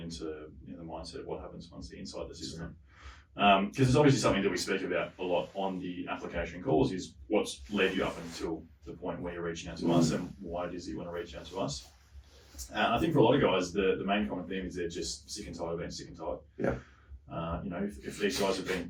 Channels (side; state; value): both; identical; correlation 1.00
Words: into the mindset of what happens once they're inside the system. Because it's obviously something that we speak about a lot on the application calls, is what's led you up until the point where you're reaching out to us, and why it is that you want to reach out to us. I think for a lot of guys, the main common theme is they're just sick and tired of being sick and tired. Yeah. If these guys have